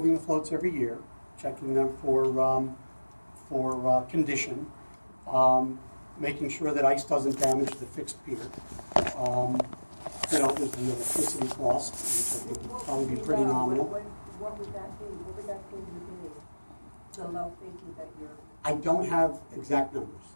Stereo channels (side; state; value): both; inverted; correlation -1.00